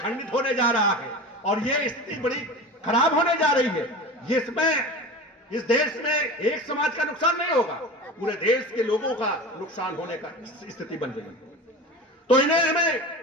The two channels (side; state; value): both; normal; correlation 0.32